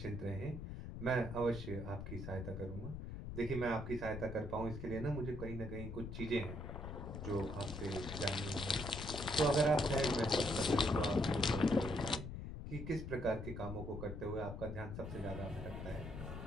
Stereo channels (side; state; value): left; noise; rumble, 7 dB below the sound